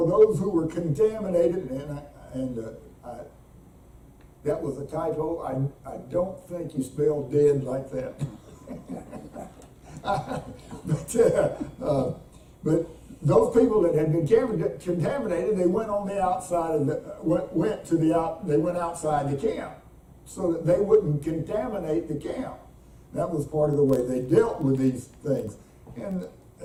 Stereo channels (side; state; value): both; identical; correlation 1.00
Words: those who were contaminated, and that was a typo. I don't think you spelled dead like that. But those people that had been contaminated, they went on the outside of they went outside the camp so that they wouldn't contaminate the camp. That was part of the way they dealt with these things, and